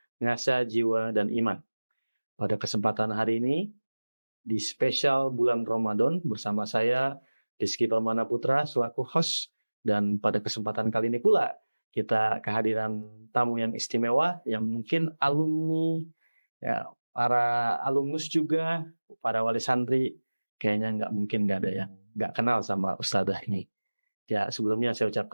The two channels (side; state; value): both; inverted; correlation -1.00